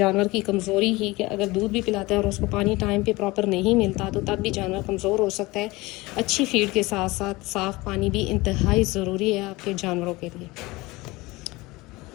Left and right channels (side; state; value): right; quieter; 21.7 dB